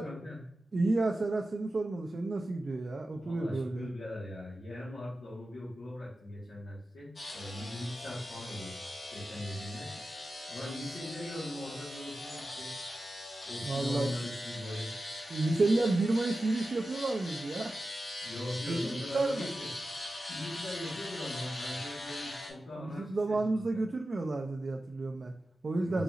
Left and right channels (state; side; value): normal; both; correlation 0.93